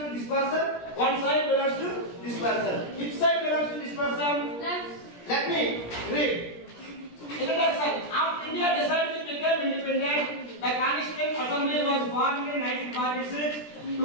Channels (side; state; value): right; late; 17 ms